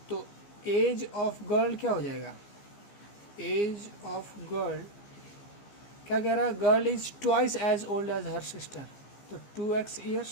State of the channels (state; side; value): late; right; 15 ms